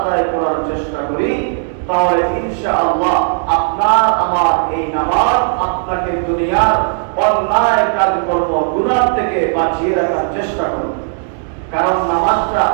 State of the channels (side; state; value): left; silent; 61 dB below the other